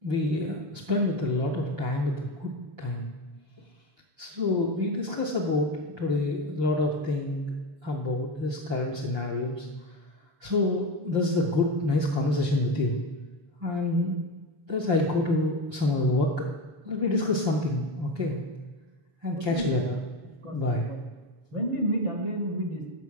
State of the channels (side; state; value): left; late; 7.1 ms